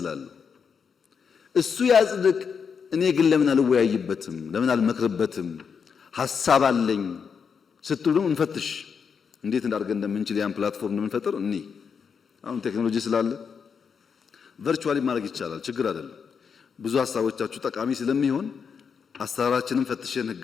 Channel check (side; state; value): right; quieter; 6.3 dB